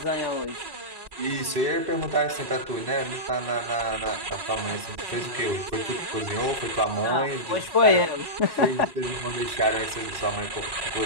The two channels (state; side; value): late; left; 1.1 ms